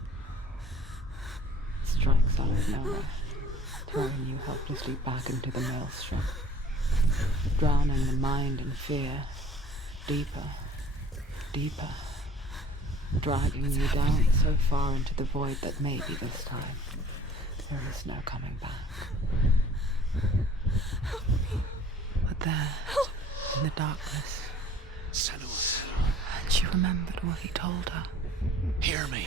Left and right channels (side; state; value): both; normal; correlation 0.51